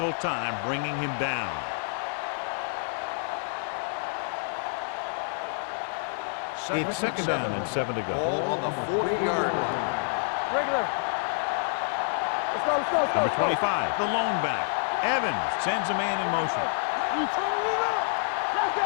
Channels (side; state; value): right; silent; digital silence